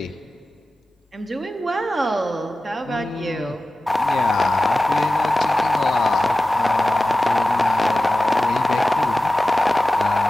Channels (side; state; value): both; normal; correlation 0.95